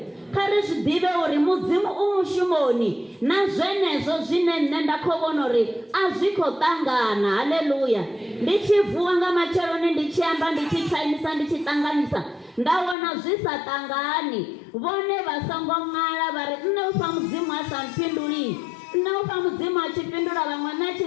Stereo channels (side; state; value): right; drops out; at 13.0 s